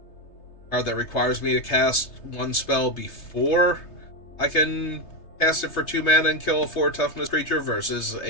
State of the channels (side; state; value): right; late; 3.3 ms